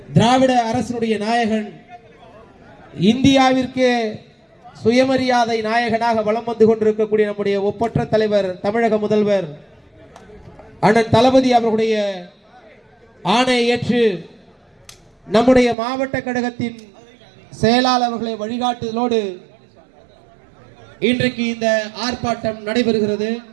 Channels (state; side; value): drops out; left; at 15.8 s